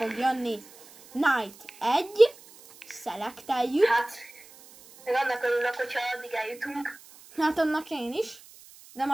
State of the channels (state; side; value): noise; right; hiss, 22 dB below the sound